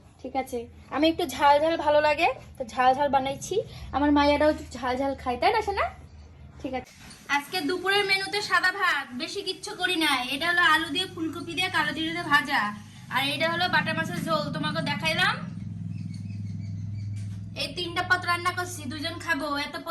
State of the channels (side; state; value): both; identical; correlation 1.00